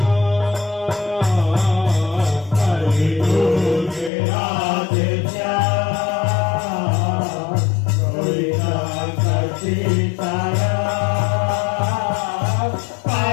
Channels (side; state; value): right; drops out; at 4.1 s